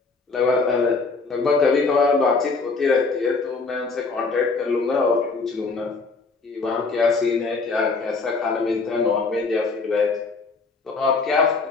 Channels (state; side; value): quieter; right; 4.2 dB